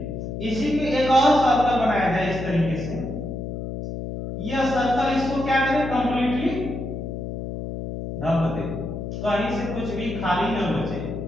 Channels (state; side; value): noise; left; hum, 6 dB below the sound